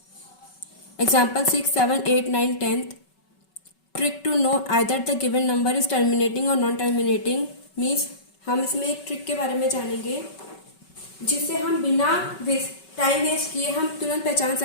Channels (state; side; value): late; right; 5.3 ms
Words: example 6, 7, 8, 9, 10th. Trick to know either the given number is terminating or non-terminating means हम इसमें एक trick के बारे में जानेंगे जिससे हम बिना टाइम वेस्ट किए हम तुरंत पहचान